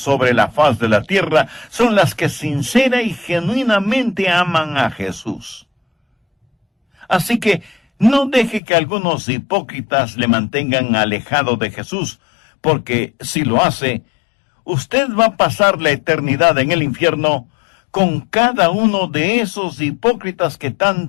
la faz de la tierra son las que sincera y genuinamente aman a Jesús. Así que no deje que algunos hipócritas le mantengan alejado de Jesús, porque si lo hace, usted va a pasar la eternidad en el infierno con cada uno de esos hipócritas que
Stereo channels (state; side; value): drops out; right; at 8.6 s